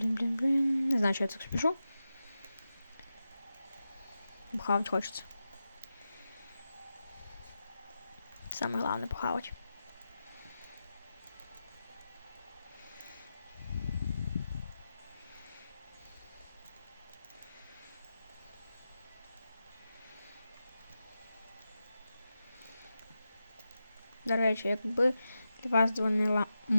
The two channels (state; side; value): inverted; both; correlation -0.91